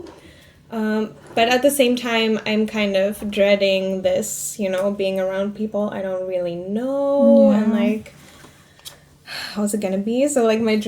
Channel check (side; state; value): both; identical; correlation 1.00